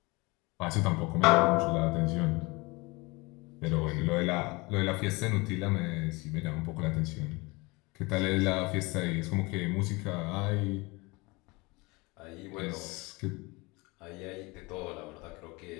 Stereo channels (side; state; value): right; quieter; 25.1 dB